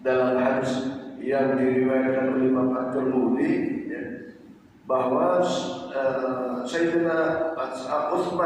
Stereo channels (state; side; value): identical; both; correlation 1.00